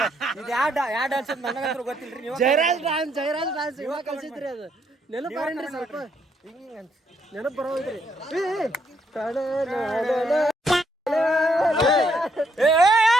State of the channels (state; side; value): normal; both; correlation 0.74